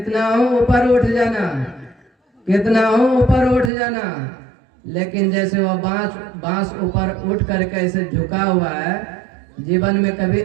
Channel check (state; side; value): drops out; left; at 3.7 s